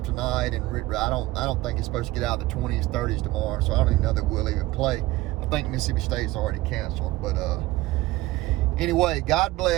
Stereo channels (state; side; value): quieter; left; 18.3 dB